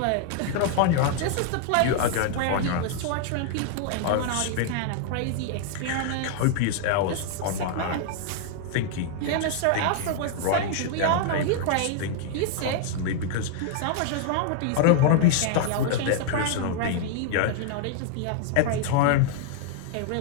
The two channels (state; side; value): different; both; correlation 0.00